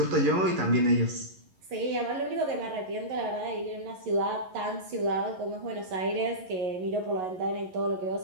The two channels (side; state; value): left; late; 11 ms